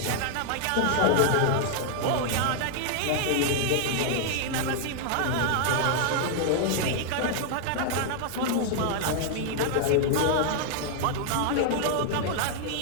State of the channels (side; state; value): both; different; correlation 0.00